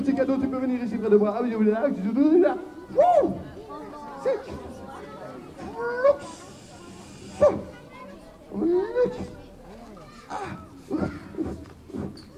cadeau, tu peux venir ici près de moi. Ah oui, là, là. Wouh! C'est...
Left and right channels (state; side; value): identical; both; correlation 1.00